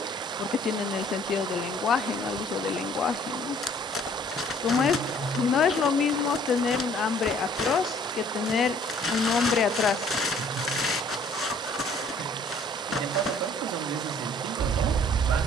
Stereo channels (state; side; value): normal; both; correlation 0.57